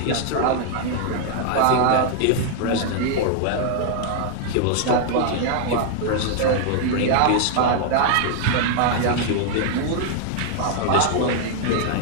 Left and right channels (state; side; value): different; both; correlation 0.00